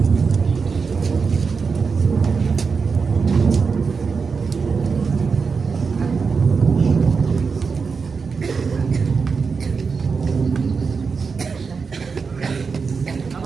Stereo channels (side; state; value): left; quieter; 5.2 dB